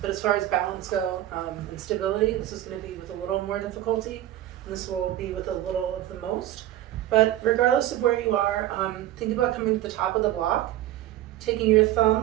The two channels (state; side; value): quieter; left; 13.7 dB